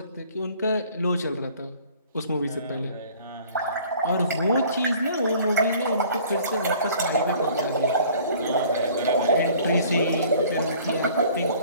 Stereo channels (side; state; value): both; inverted; correlation -0.53